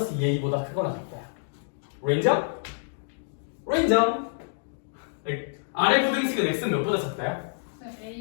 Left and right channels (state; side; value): silent; right; digital silence